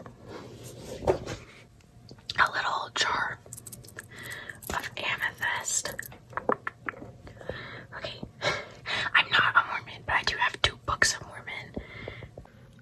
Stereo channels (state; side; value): identical; both; correlation 1.00